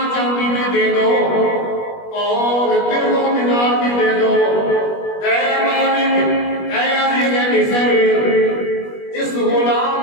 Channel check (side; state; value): right; late; 21 ms